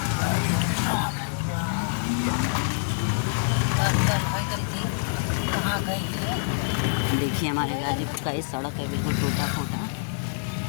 देखिए हमारे गाजीपुर का ये सड़क है बिल्कुल टूटा फूटा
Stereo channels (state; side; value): silent; right; digital silence